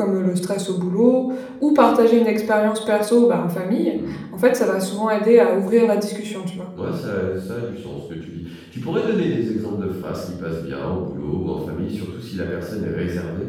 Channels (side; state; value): both; identical; correlation 1.00